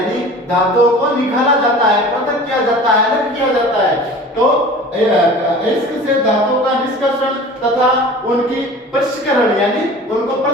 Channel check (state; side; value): normal; both; correlation 0.41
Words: धातुओं को निकाला जाता है, पृथक किया जाता है, अलग किया जाता है। तो अयस्क से धातु का निष्कर्षण तथा उनकी पृष्ठकरण, यानी उनको